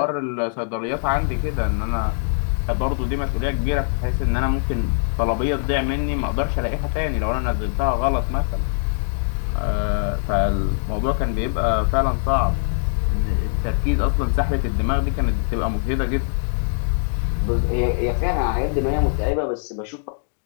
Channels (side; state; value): right; silent; digital silence